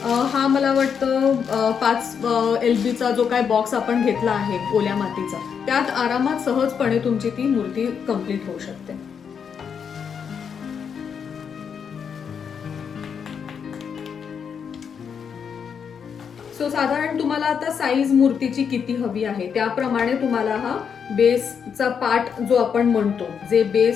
हा मला वाटतं 5 LBचा जो काय बॉक्स आपण घेतला आहे ओल्या मातीचा, त्यात आरामात सहजपणे तुमची ती मूर्ती कम्प्लीट होऊ शकते. सो साधारण तुम्हाला आता साईज मूर्तीची किती हवी आहे त्याप्रमाणे तुम्हाला हा बेसचा पार्ट जो आपण म्हणतो, जे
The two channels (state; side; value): quieter; right; 7.0 dB